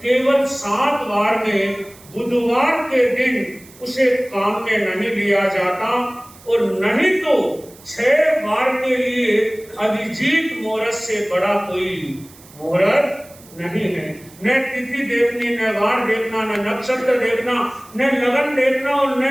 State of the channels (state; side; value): noise; right; hiss, 23 dB below the sound